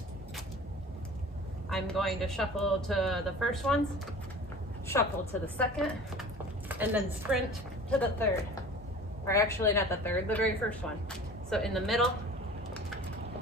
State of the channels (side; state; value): both; normal; correlation 0.42